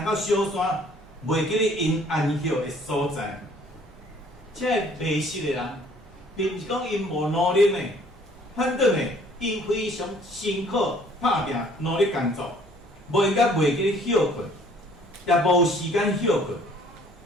到小山，袂记咧因安歇的所在。这迷失的人，并毋是讲因无努力呢，反倒呢，因非常辛苦打拼，努力工作，袂记咧休困，也无时间休困，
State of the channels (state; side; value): normal; both; correlation 0.58